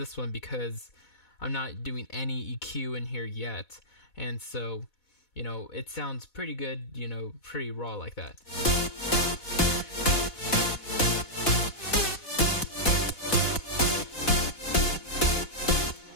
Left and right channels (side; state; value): right; late; 4.1 ms